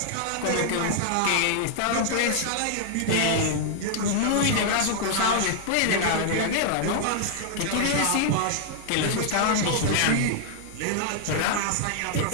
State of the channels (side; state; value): both; different; correlation -0.01